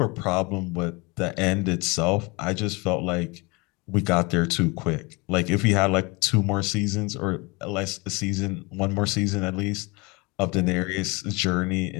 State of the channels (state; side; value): quieter; right; 26.6 dB